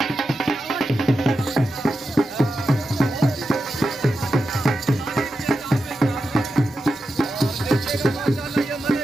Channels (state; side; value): normal; both; correlation 0.90